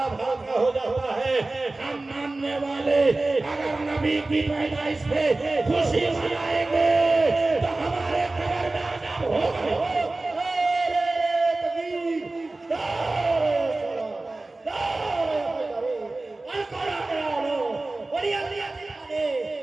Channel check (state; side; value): quieter; left; 3.1 dB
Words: हल्का हो जाता है। हम मानने वाले अगर नबी की पैदाइश पे खुशी मनाएंगे तो हमारे कब्र में अज़ाब होगा।